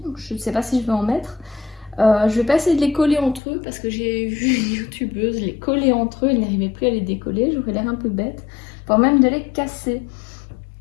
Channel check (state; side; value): drops out; right; at 3.4 s